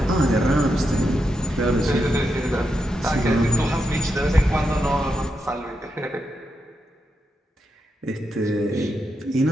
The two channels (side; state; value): both; normal; correlation 0.85